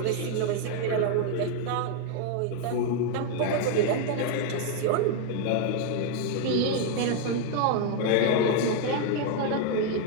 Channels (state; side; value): different; both; correlation 0.01